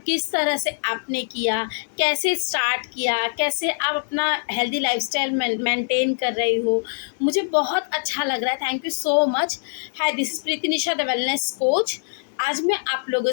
तरह से आपने किया, कैसे स्टार्ट किया, कैसे आप अपना हेल्दी लाइफस्टाइल मेंटेन कर रही हो। मुझे बहुत अच्छा लग रहा है, thank you so much. Hi, this is Preeti Nisha the wellness coach. आज मैं आप लोगों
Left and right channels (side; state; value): right; silent; digital silence